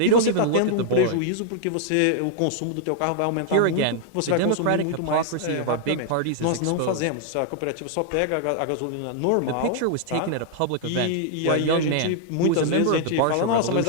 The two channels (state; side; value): different; both; correlation -0.01